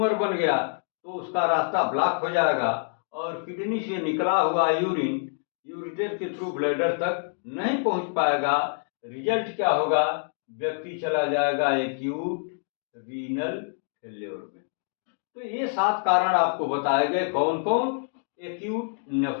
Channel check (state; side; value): silent; right; 61 dB below the other